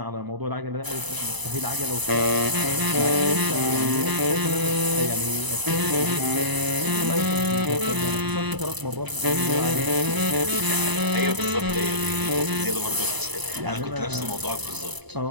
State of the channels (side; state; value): left; late; 1.0 ms